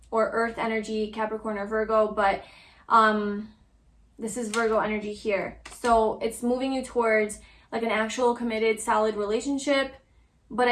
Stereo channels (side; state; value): both; identical; correlation 1.00